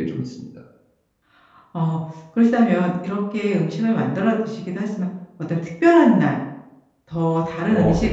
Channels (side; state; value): both; identical; correlation 1.00